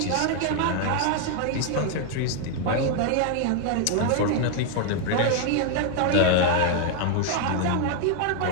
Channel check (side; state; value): both; different; correlation 0.01